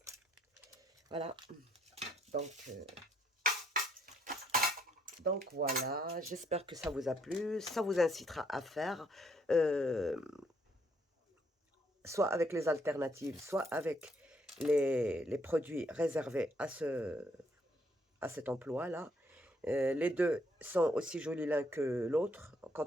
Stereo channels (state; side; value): normal; both; correlation 0.70